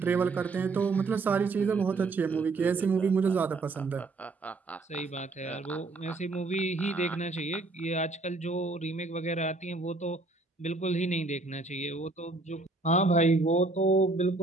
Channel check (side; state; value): left; quieter; 3.4 dB